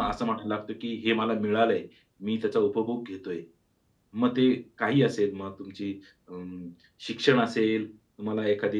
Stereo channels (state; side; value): identical; both; correlation 1.00